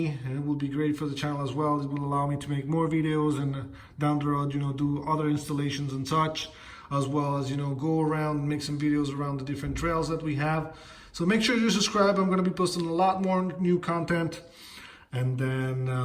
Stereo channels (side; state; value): both; identical; correlation 1.00